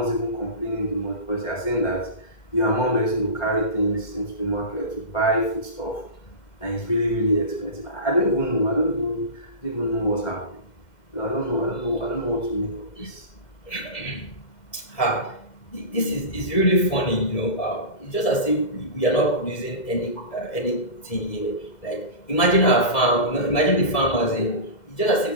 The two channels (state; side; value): late; right; 2.0 ms